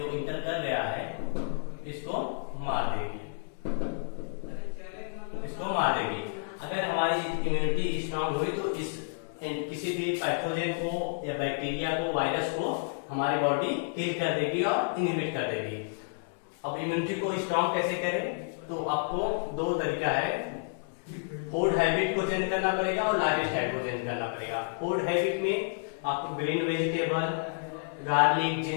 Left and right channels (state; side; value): silent; right; 58 dB below the other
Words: इंटर कर गया है इसको मार देगी। अगर हमारी इम्यूनिटी स्ट्रांग हुई तो इस किसी भी पैथोजन को या बैक्टीरिया को, वायरस को हमारी बॉडी किल कर देगी और इनहिबिट कर देगी। अब इम्यूनिटी को स्ट्रांग कैसे करें, तो आपको दो तरीका है, फूड हैबिट को चेंज करना पड़ेगा और लाइफ स्टाइल को चेंज करना पड़ेगा। फूड हैबिट में आपको green vegetable, garlic,